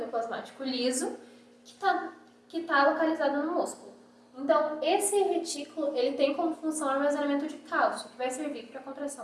liso, que está localizado no músculo. Então, esse retículo ele tem como função o armazenamento de cálcio, que vai servir para a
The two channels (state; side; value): identical; both; correlation 1.00